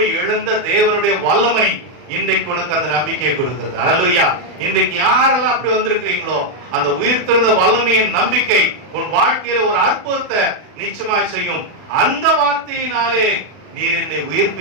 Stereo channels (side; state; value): left; late; 40 ms